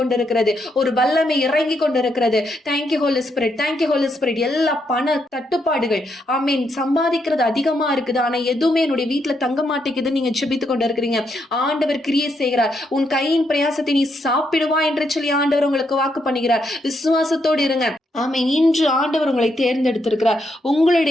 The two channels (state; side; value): normal; both; correlation 0.78